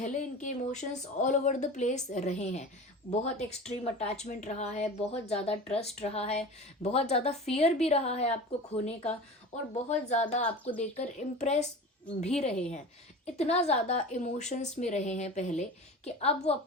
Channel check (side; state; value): both; normal; correlation 0.34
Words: इनके emotions all over the place रहे हैं। बहुत एक्सट्रीम अटैचमेंट रहा है, बहुत ज़्यादा ट्रस्ट रहा है, बहुत ज़्यादा फियर भी रहा है आपको खोने का, और बहुत ज़्यादा आपको देखकर इम्प्रेस भी रहे हैं। इतना ज़्यादा इमोशंस में रहे हैं पहले कि अब वो